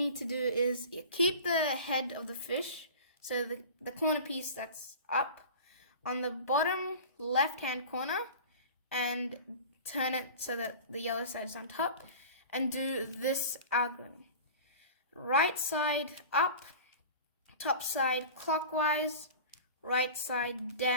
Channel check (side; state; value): both; inverted; correlation -0.37